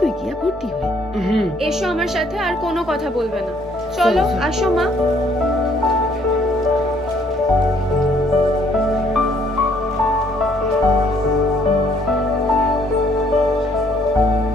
গিয়া ভর্তি হয়ে। এসো আমার সাথে, আর কোনো কথা বলবে না। চলো, চলো। আসো মা।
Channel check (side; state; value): both; normal; correlation 0.65